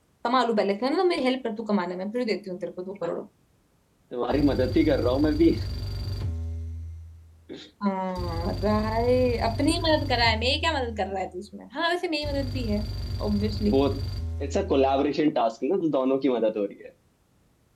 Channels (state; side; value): identical; both; correlation 1.00